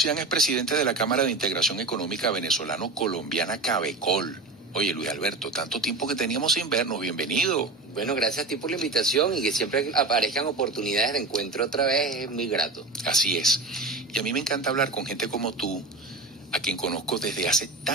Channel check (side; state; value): left; quieter; 3.4 dB